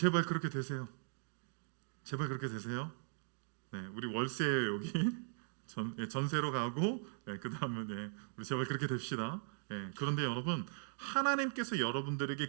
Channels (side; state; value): left; silent; digital silence